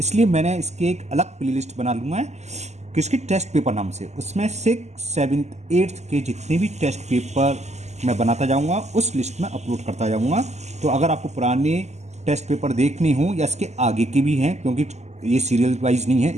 मैंने इसके एक अलग प्लेलिस्ट बना लूँगा किसकी टेस्ट पेपर नाम से। उसमें 6, 7, 8 के जितने भी टेस्ट पेपर मैं बनाता जाऊंगा उस लिस्ट में अपलोड करता जाऊंगा। तो अगर आपको पुराने टेस्ट पेपर देखने हो या इसके आगे के भी हैं, क्योंकि ये सीरियल वाइज नहीं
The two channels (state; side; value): late; left; 0.33 ms